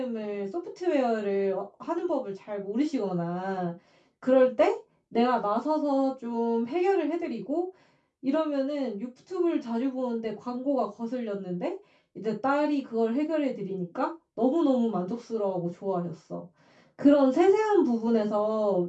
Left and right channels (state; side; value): identical; both; correlation 1.00